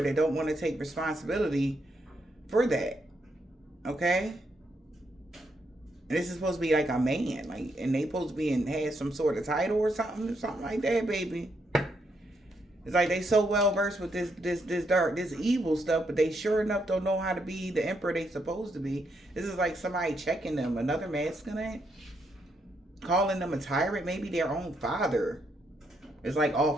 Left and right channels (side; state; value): both; normal; correlation 0.78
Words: that don't want to take responsibility for that. Okay? And this is supposed to be like a man. Like, and they supposed to be had some sort of title or something like that, baby. It's like they so well versed with this dark, this evil stuff, but they sure enough don't know how to be the emperor they supposed to be. This is like somebody checking them, another masculine, calling them a tyrant, maybe their own father. It's like